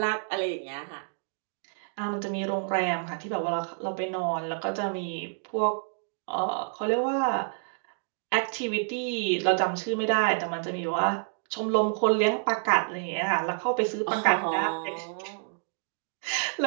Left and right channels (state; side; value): silent; left; digital silence